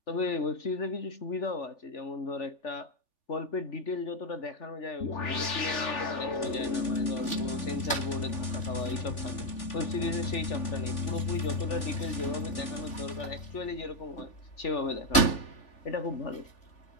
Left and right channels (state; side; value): late; right; 3.4 ms